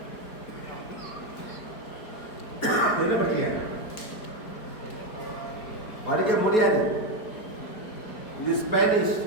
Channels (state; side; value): late; right; 4.6 ms